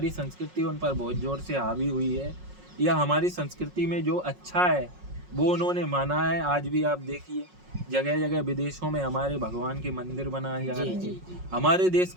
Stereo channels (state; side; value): late; left; 5.5 ms